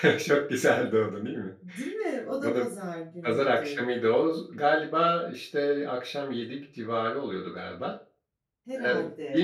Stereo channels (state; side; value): identical; both; correlation 1.00